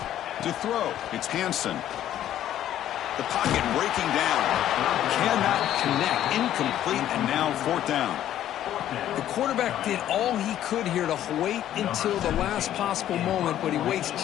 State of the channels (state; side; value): quieter; right; 11.8 dB